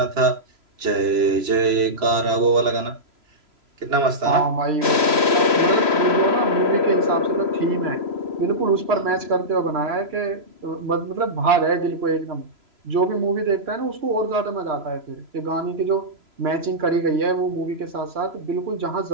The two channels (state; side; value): late; left; 3.0 ms